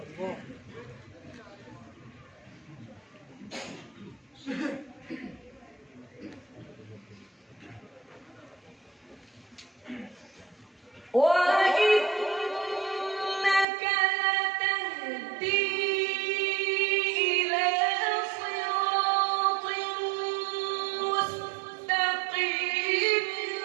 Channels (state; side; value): drops out; left; at 13.7 s